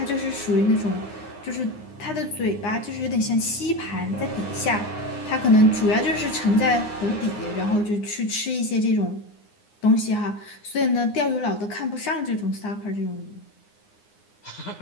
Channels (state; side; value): late; right; 9.7 ms